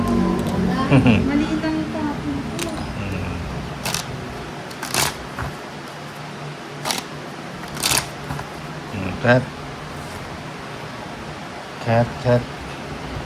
Maliit ang tapon ko. Cat. Cat, cat.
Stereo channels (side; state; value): both; identical; correlation 1.00